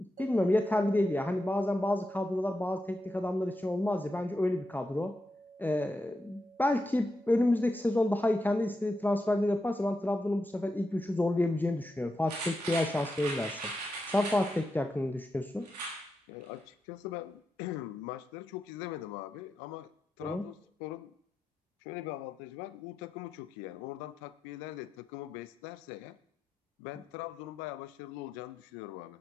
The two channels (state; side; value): normal; both; correlation 0.87